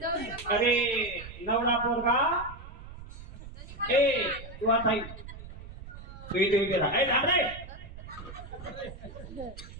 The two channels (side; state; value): right; noise; rumble, 14 dB below the sound